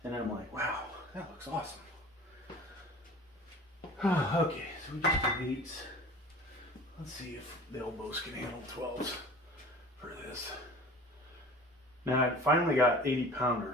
and I'm like, wow, that looks awesome. Okay, so we just did 8s. Let's see if the elbows can handle 12s for this. Now I finally got 80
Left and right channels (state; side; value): normal; both; correlation 0.42